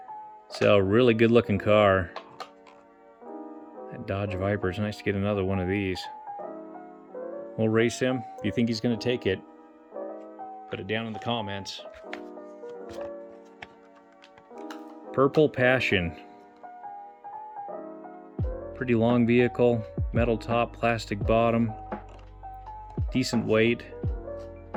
So really good looking car. That Dodge Viper, it's nice to get another one of these. We'll race him. If you think he's gonna take it, put it down in the comments. Purple Passion. Pretty long vehicle, metal top, plastic bottom, decent weight.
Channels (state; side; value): identical; both; correlation 1.00